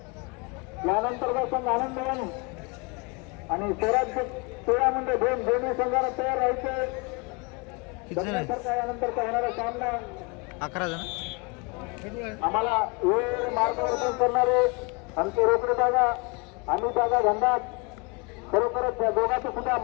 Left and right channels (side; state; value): right; quieter; 29.9 dB